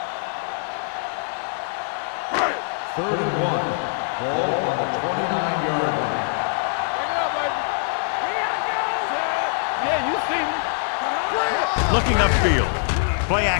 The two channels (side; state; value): right; silent; 58 dB below the other